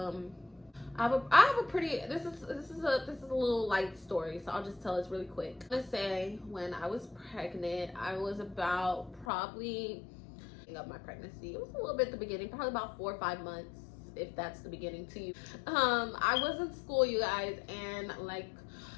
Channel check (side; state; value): right; drops out; at 9.2 s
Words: I have a pretty, this is a little light story, so I'll just tell this really quick. I'm gonna say, when I was pregnant, I was about probably of my pregnancy, it was a little bit at the beginning, probably about 4 or 5 months, if that's the beginning to you. I was in school, you guys, and like